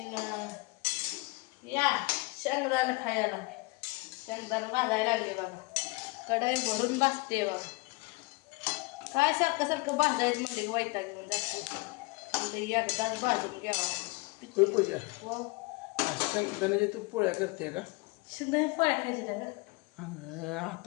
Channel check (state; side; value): quieter; right; 25.4 dB